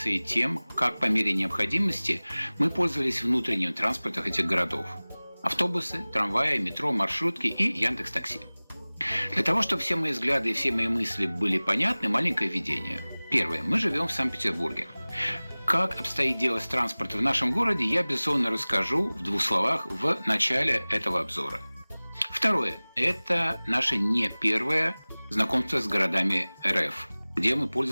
и тем, как по мере необходимости мы пользовались внутренним транспортом этих городов: автобусы, трамваи, метро, маршрутки и Яндекс.Такси. Для того, чтобы все мои взгляды и все мои мысли были понятны, маленькое введение. Первое. Мы живем в Санкт-Петербурге. Как обстоит дело с транспортом в нашем городе, я, безусловно, расскажу в 2 словах в начале этого обзора. Второе. Это наше не первое знакомство с городами РФ, где мы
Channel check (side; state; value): both; inverted; correlation -1.00